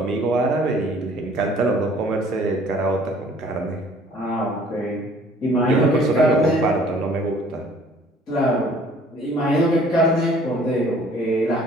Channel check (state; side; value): normal; both; correlation 0.55